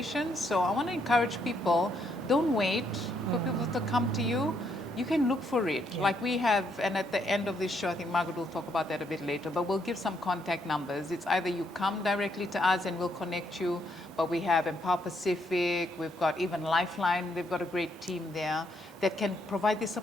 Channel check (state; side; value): normal; both; correlation 0.74